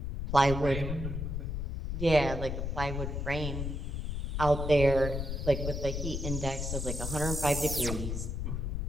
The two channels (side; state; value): left; noise; rumble, 3 dB below the sound